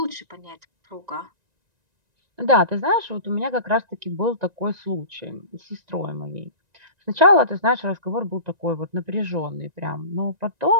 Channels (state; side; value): late; left; 1.9 ms